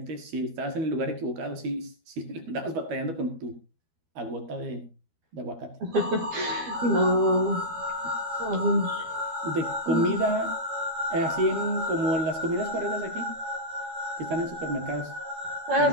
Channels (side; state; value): left; late; 12 ms